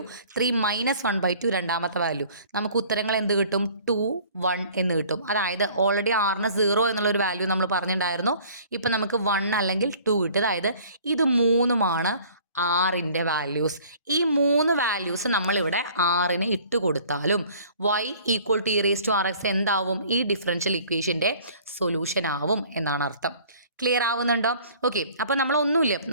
3 മൈനസ് 1/2 രണ്ടാമത്തെ വാല്യൂ. നമുക്ക് ഉത്തരങ്ങൾ എന്ത് കിട്ടും? 2, 1 എന്ന് കിട്ടും. അതായത് ഓൾറെഡി r-ന് 0 എന്നുള്ളൊരു വാല്യൂ നമ്മൾ പറഞ്ഞിട്ടുണ്ടായിരുന്നു. ഇപ്പം നമുക്ക് 1 അല്ലെങ്കിൽ 2 കിട്ടും. അതായത് ഇത് 3-മാണ് ആറിൻ്റെ വാല്യൂസ്. ഈ 3 വാല്യൂസ് നമ്മളിവിടെ ആറിന് ഇട്ട് കൊടുത്താലും y ഈക്വൽ ടു e⁻⁴x എന്താവും? ഈ ഡിഫറൻഷ്യൽ ഇക്വേഷൻ്റെ സൊല്യൂഷൻ ആവും എന്നാണ് അർത്ഥം. ക്ലിയർ ആവുന്നുണ്ടോ? ഓക്കെ, അപ്പോൾ നമ്മളൊന്നുമില്ല,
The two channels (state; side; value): inverted; both; correlation -0.52